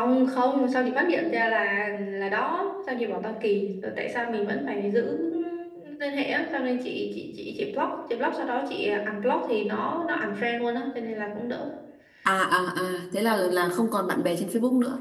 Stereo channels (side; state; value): both; identical; correlation 1.00